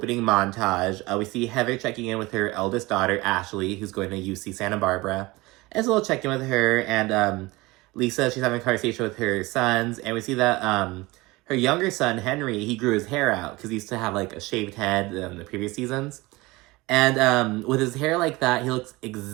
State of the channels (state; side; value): quieter; left; 21.8 dB